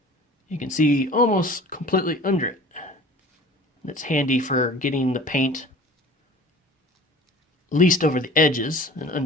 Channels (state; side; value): normal; both; correlation 0.44